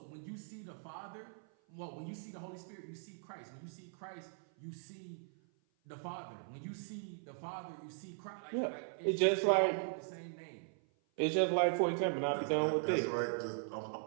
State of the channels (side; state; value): left; silent; 52 dB below the other